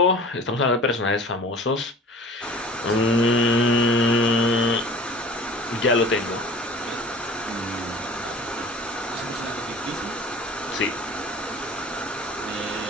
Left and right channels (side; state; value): both; normal; correlation 0.42